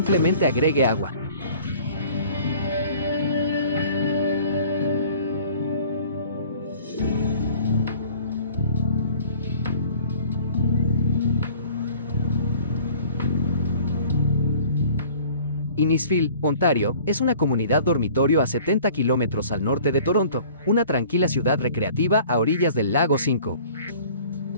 agregue agua. Innisfil, Ontario, es una comunidad dormitorio a 70 kilómetros al norte de Toronto, una tranquila ciudad recreativa a orillas del lago Simcoe.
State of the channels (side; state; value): both; inverted; correlation -0.49